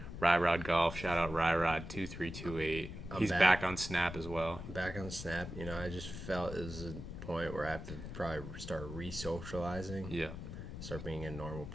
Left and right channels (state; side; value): noise; left; rumble, 9 dB below the sound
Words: Ryrod Golf. Shout out Ryrod2328. He's back on Snap as well. Back on Snap. I just felt it was a point where I have to probably start re-socializing. Yeah. Start being a normal